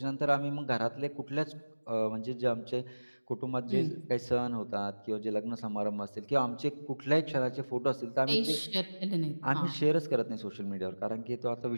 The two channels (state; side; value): inverted; both; correlation -1.00